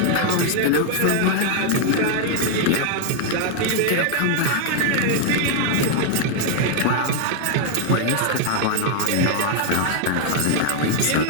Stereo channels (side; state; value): both; different; correlation 0.00